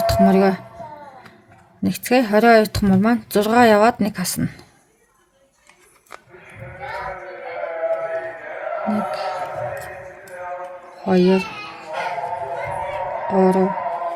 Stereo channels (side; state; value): both; identical; correlation 1.00